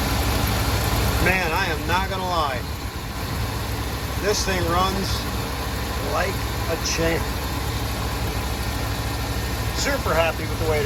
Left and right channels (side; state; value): both; identical; correlation 1.00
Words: Man, I am not gonna lie, this thing runs like a champ. Super happy with the way